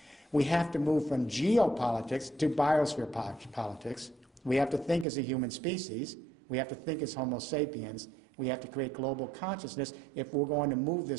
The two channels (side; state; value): left; drops out; at 5.1 s